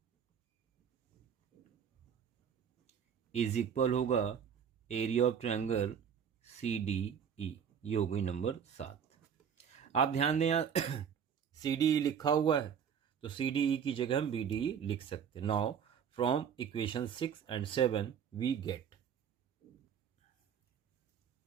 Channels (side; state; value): left; quieter; 7.8 dB